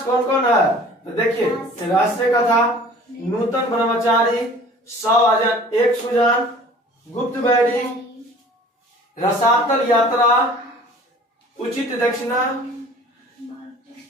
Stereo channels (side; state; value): both; normal; correlation 0.47